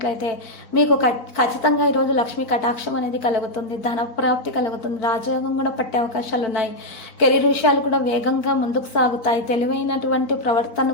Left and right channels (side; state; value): right; late; 4.2 ms